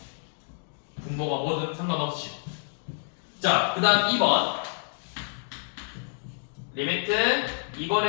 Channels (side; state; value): right; silent; 59 dB below the other